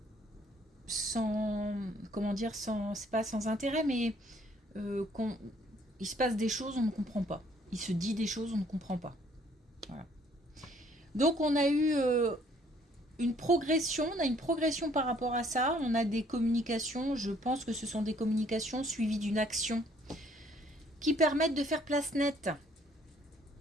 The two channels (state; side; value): normal; both; correlation 0.62